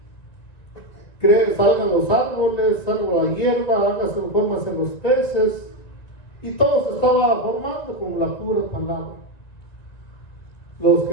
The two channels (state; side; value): late; right; 1.9 ms